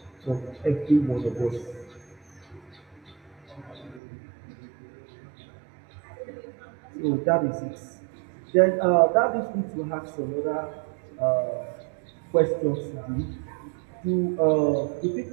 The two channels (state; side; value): drops out; left; at 4.0 s